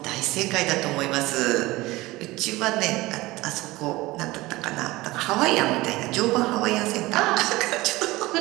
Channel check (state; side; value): quieter; left; 19.8 dB